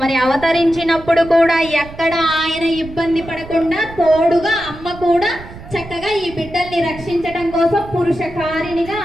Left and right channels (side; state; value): right; noise; rumble, 15 dB below the sound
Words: మరి అవతరించినప్పుడు కూడా ఎక్కడ ఆయన ఇబ్బంది పడకుండా తోడుగా అమ్మ కూడా చక్కగా ఈ బిడ్డల్ని రక్షించడం కోసం పురుషకారిణిగా